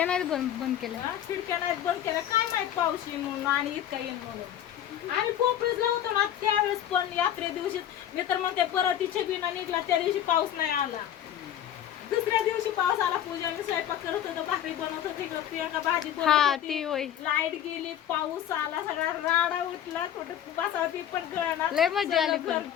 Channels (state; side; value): quieter; right; 10.8 dB